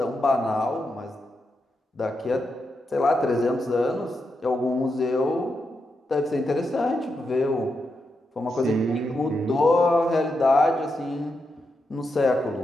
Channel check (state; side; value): normal; both; correlation 0.85